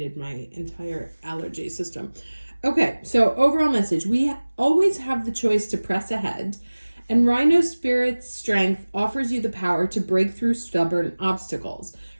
my entire allergy system. Okay, so overall message, we always have the choice to press ahead, and Rhino Spirit's strength offers you the power to break through stubborn obstacles,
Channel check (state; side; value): inverted; both; correlation -1.00